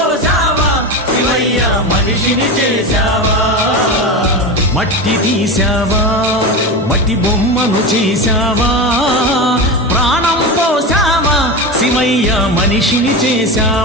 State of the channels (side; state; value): both; normal; correlation 0.21